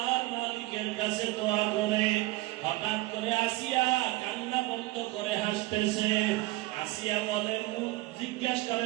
মালিকের কাছে দোয়া করে। হঠাৎ করে আসিয়া কান্না বন্ধ করে হাসতেছে। আসিয়া বলে, জিজ্ঞেস করে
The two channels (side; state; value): left; quieter; 19.2 dB